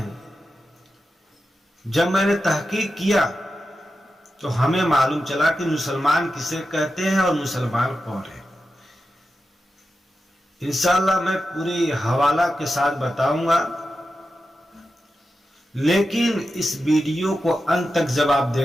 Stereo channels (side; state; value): both; normal; correlation 0.91